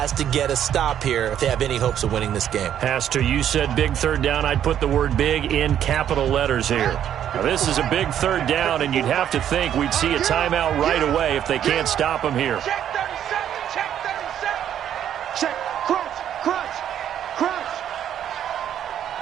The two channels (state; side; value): quieter; left; 10.1 dB